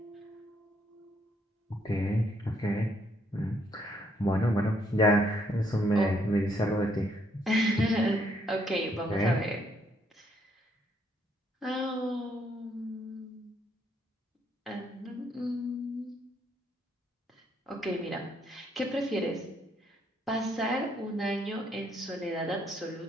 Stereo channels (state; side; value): normal; both; correlation 0.72